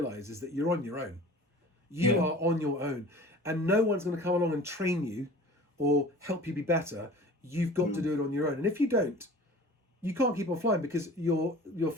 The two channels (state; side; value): normal; both; correlation 0.42